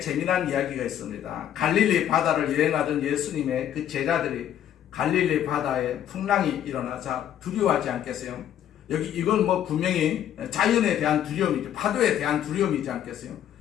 이야기가 있습니다. 갈릴리 바다를 여행하던 예수님의 그 제자들이 갈릴리 바다에 풍랑이 일어나자 두려워하지 않겠어요? 이건 분명히 자연에 대한 두려움이죠. 파도에 대한 두려움이지 않겠어요?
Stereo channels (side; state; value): right; quieter; 10.5 dB